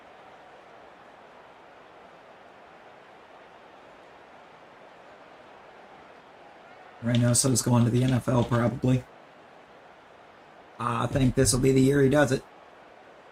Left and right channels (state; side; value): identical; both; correlation 1.00